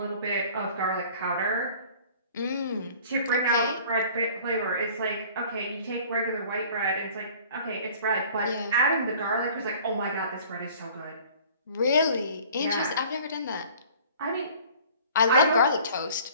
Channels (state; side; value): inverted; both; correlation -0.49